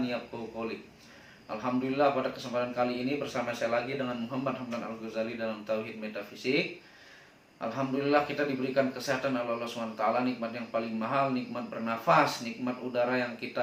yafqahu qawli. Alhamdulillah, pada kesempatan kali ini bersama saya lagi dengan Muhammad Hamdan Al-Ghazali dalam Tauhid Metafisik. Alhamdulillah kita diberikan kesehatan oleh Allah SWT, nikmat yang paling mahal, nikmat bernafas, nikmat udara yang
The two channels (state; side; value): identical; both; correlation 1.00